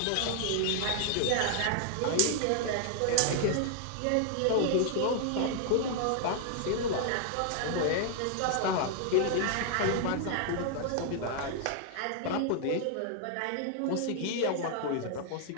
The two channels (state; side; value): different; both; correlation 0.00